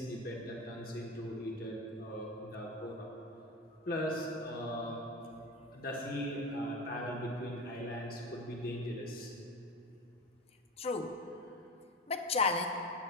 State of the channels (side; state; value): both; normal; correlation 0.25